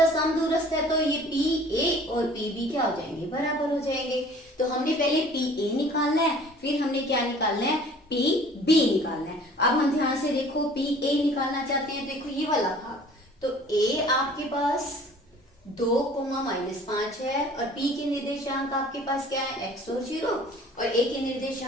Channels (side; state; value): both; normal; correlation 0.50